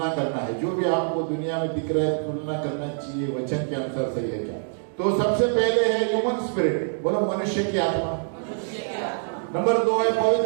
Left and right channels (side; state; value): left; silent; digital silence